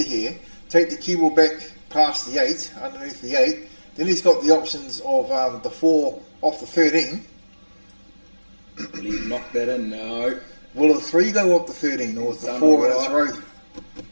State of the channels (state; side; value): inverted; both; correlation -1.00